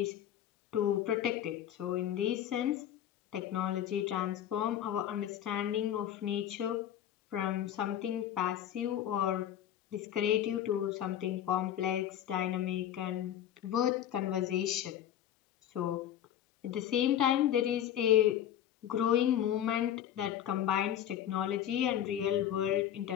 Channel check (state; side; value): quieter; right; 10.8 dB